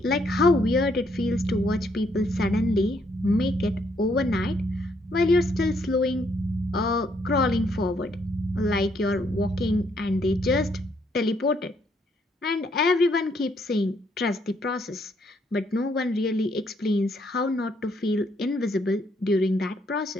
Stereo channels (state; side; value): normal; both; correlation 0.71